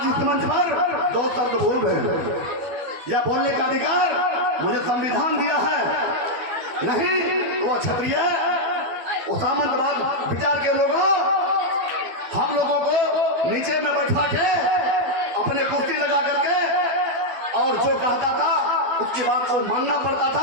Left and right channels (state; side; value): late; left; 12 ms